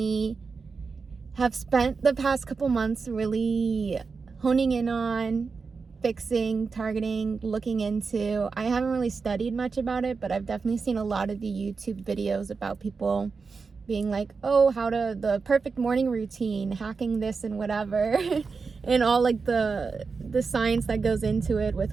have spent the past couple months really honing in on, fixing, targeting, looking into. I haven't really studied much about it, but I've definitely seen a lot of the YouTube videos about people being like, oh, how to the perfect morning routine, hacking this and whatever, and all like the science that goes into it with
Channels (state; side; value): quieter; left; 4.8 dB